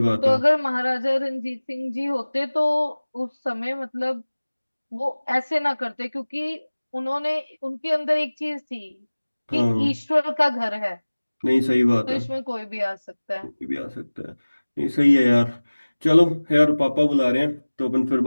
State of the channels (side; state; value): both; inverted; correlation -1.00